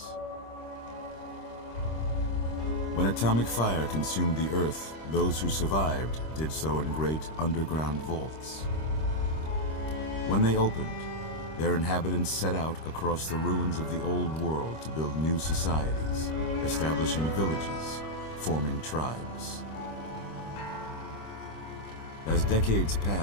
When atomic fire consumed the Earth, those who survived did so in great underground vaults. When they opened, their inhabitants set out across the ruins of the old world to build new societies, establishing villages, forming tribes. As decades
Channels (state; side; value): late; right; 26 ms